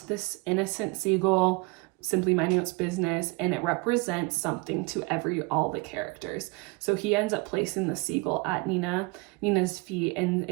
this innocent seagull, simply minding its business, and it represents something to all the characters. So he ends up placing the seagull at Nina's feet and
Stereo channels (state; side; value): quieter; left; 26.3 dB